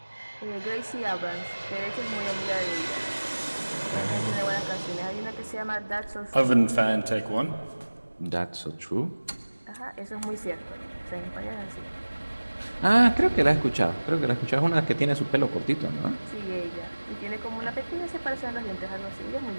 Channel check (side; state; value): both; inverted; correlation -1.00